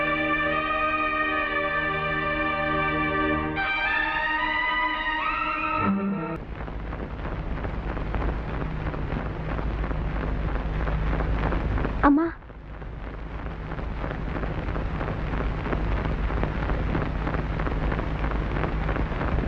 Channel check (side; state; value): both; identical; correlation 1.00